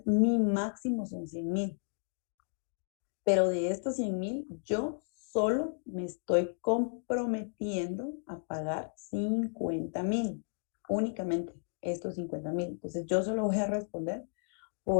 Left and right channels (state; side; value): silent; right; digital silence